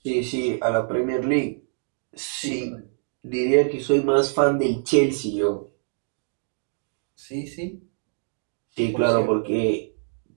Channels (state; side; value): silent; left; digital silence